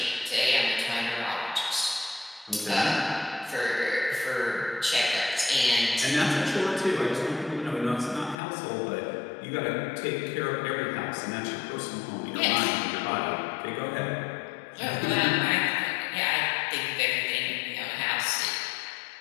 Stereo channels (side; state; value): right; drops out; at 8.3 s